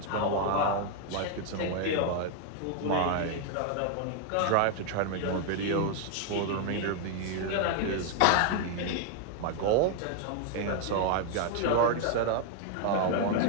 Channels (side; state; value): both; different; correlation 0.00